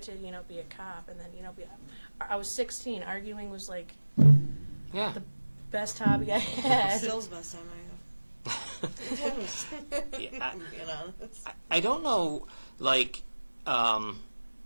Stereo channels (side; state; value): both; inverted; correlation -1.00